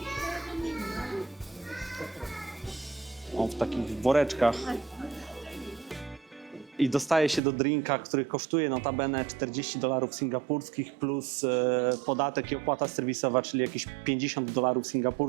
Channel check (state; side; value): drops out; left; at 7.4 s